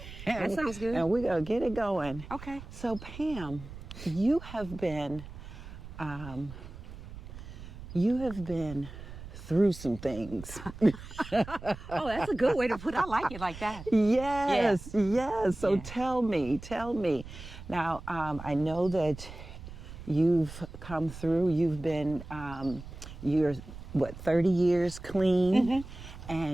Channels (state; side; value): noise; right; rumble, 13 dB below the sound